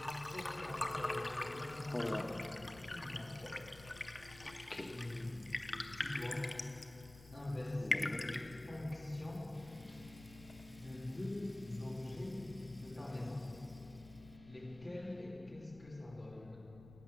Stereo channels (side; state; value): left; noise; rumble, 18 dB below the sound